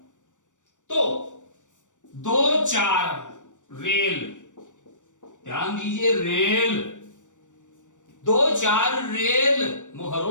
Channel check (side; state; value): right; late; 0.86 ms